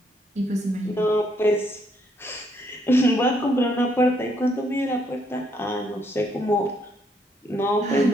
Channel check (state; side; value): normal; both; correlation 0.72